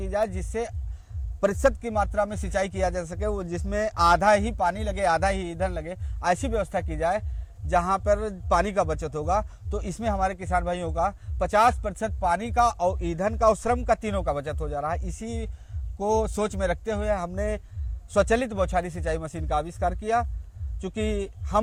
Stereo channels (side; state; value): both; identical; correlation 1.00